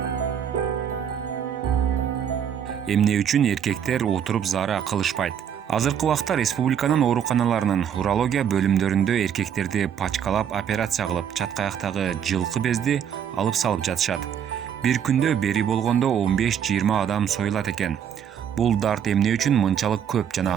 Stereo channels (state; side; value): quieter; left; 8.6 dB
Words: Эмне үчүн эркектер отуруп заара кылышпайт? Азыркы убакта республиканын ооруканаларынын урология бөлүмдөрүндө эркектерди пачкалап операция кылып, чаткаяктагы жылкы безди алып салып жатышат. Бир күндө бери болгондо 15-20 адам союлат экен. Бул дарт эмне үчүн мынчалык көп